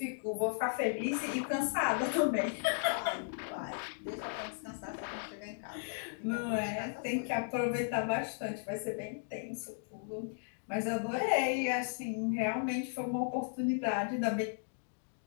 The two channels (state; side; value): silent; right; digital silence